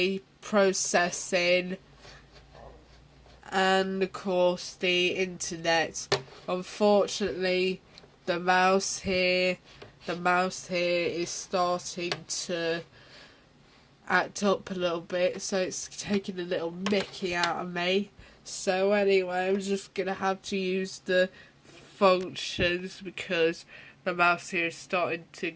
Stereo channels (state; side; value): identical; both; correlation 1.00